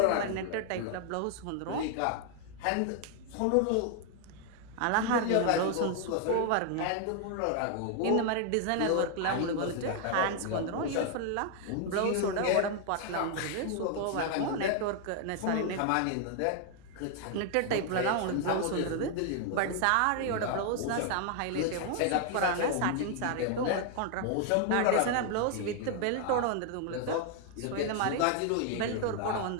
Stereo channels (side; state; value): both; different; correlation 0.00